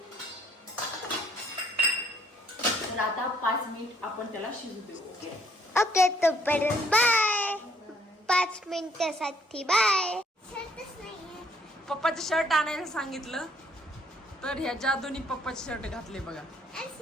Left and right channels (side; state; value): both; normal; correlation 0.65